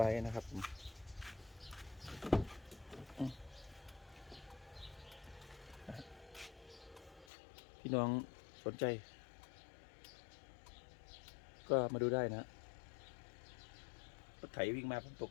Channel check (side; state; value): right; drops out; at 7.2 s